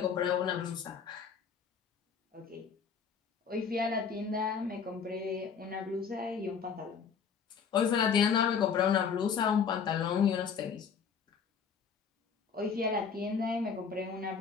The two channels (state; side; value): quieter; right; 6.4 dB